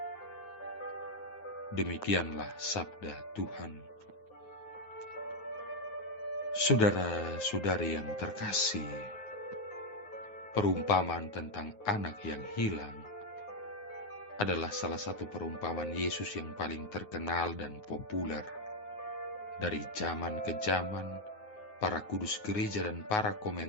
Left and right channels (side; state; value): right; late; 9.5 ms